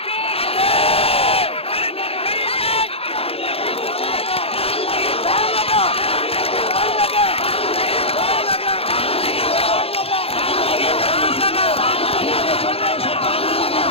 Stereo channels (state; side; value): late; right; 0.28 ms